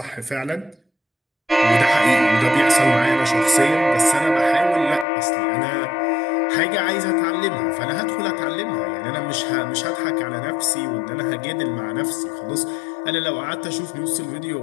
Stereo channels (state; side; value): drops out; right; at 5.1 s